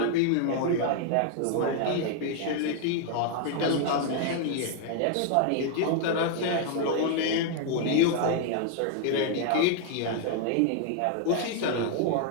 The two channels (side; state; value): both; different; correlation 0.00